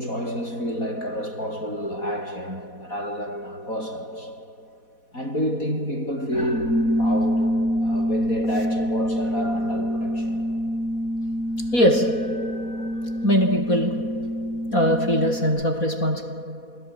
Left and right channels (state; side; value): late; right; 4.2 ms